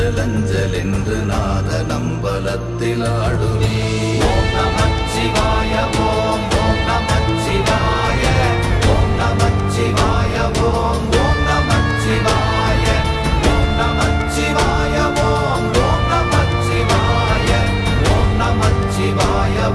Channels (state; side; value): identical; both; correlation 1.00